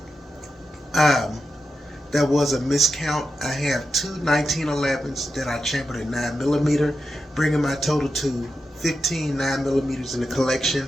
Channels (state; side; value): normal; both; correlation 0.88